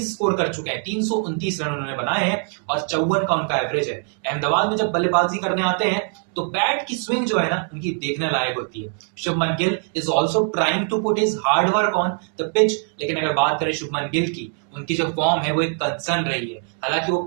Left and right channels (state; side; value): quieter; left; 39.7 dB